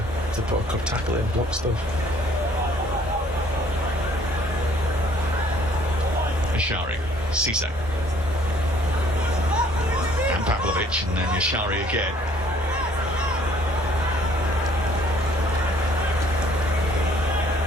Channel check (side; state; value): both; normal; correlation 0.59